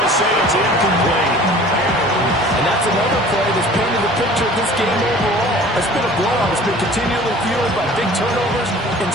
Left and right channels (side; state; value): both; normal; correlation 0.46